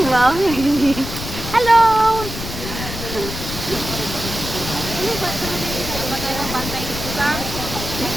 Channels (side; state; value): left; noise; rumble, 8 dB below the sound